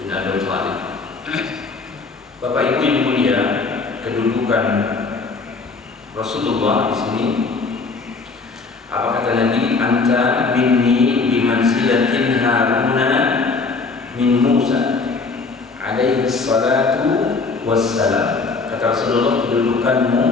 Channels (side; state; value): right; quieter; 4.2 dB